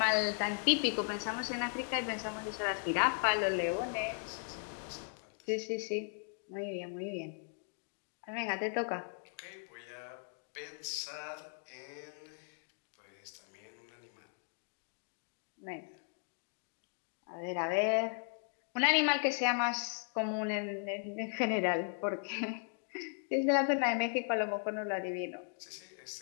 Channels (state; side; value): silent; right; 53 dB below the other